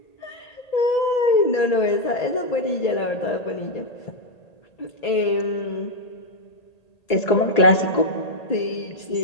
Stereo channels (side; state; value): right; late; 1.8 ms